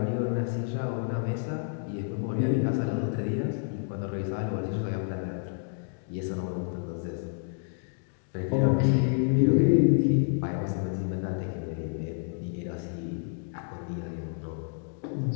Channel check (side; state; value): right; silent; digital silence